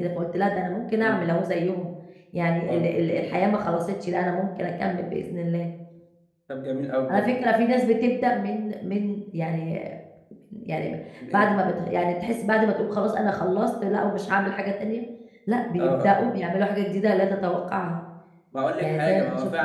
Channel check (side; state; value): both; identical; correlation 1.00